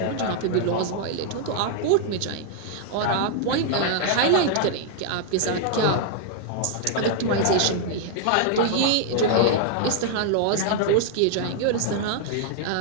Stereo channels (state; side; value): different; both; correlation 0.00